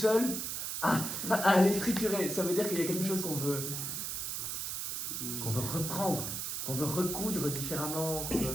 à aller triturer. Ça veut dire qu'il y a quelque chose qu'on veut reprendre, qu'on veut recoudre différemment.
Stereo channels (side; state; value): right; noise; hiss, 3 dB below the sound